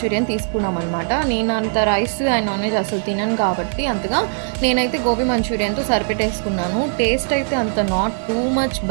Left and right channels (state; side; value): silent; left; digital silence